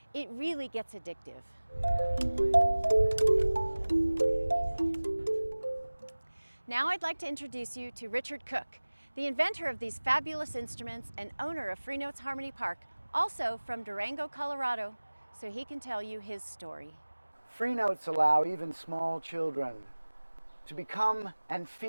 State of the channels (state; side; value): inverted; both; correlation -1.00